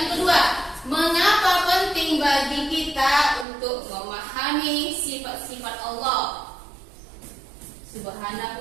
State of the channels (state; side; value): drops out; left; at 3.5 s